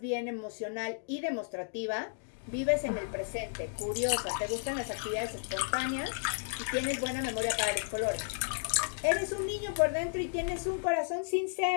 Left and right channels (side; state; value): right; silent; digital silence